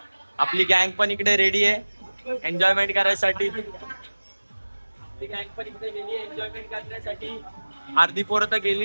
आपली गँग पण इकडे रेडी आहे एन्जॉयमेंट करायसाठी. आपली गँग पण इकडे रेडी आहे एन्जॉयमेंट करण्यासाठी. अर्धी पोरं तर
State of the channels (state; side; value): inverted; both; correlation -1.00